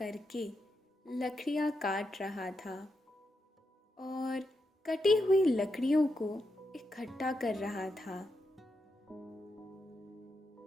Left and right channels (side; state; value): both; normal; correlation 0.84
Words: लकड़ियां काट रहा था और कटी हुई लकड़ियों को इकट्ठा कर रहा था।